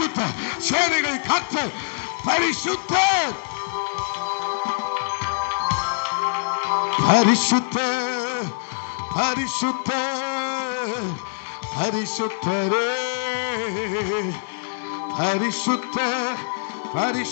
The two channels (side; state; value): right; silent; digital silence